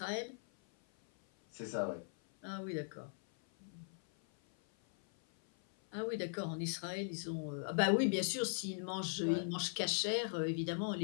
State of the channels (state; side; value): silent; right; 51 dB below the other